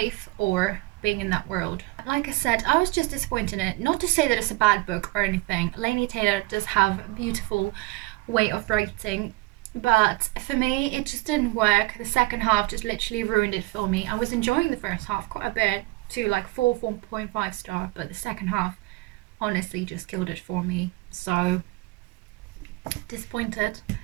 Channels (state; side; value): quieter; left; 21.7 dB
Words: or being in that world. Like I said, I was just disappointed in it. Not to say that it's a bad book or anything. Laini Taylor does have a beautiful way of writing, but for me it just didn't work. The second half just literally ruined it for me. I was enjoying the first half quite a bit, to like 4.5 star, but the second half honestly just killed it for me. So disappointed.